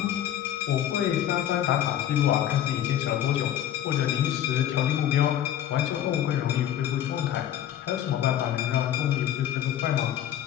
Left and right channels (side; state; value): right; quieter; 11.1 dB